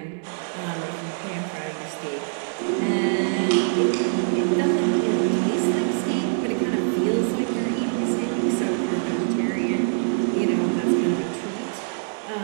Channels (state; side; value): silent; left; 61 dB below the other